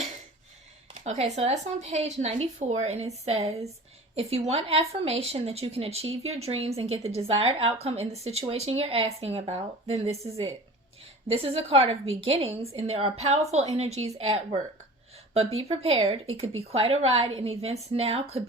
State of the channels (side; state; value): both; normal; correlation 0.39